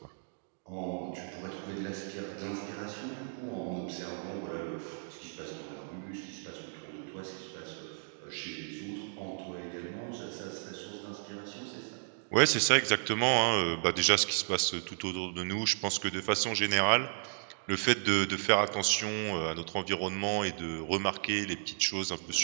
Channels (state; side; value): silent; left; digital silence